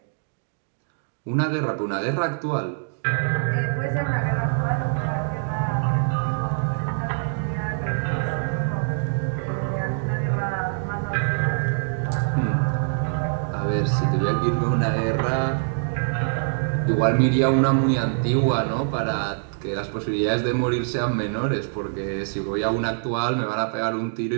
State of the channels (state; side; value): silent; left; digital silence